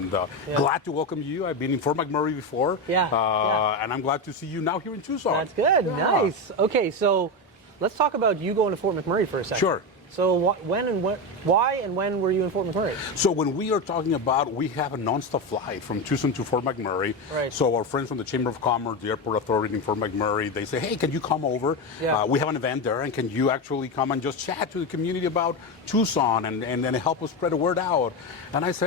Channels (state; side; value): normal; both; correlation 0.14